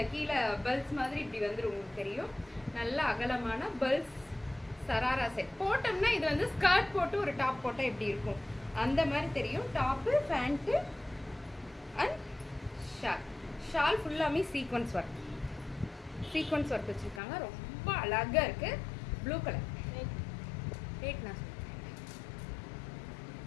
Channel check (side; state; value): right; drops out; at 17.2 s